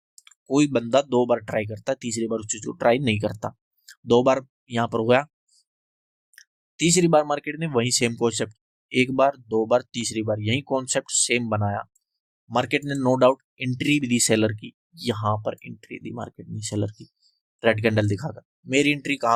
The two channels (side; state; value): both; identical; correlation 1.00